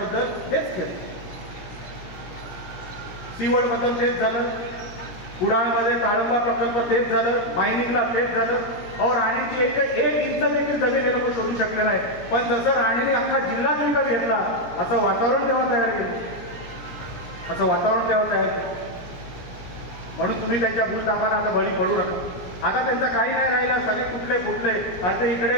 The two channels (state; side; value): late; right; 17 ms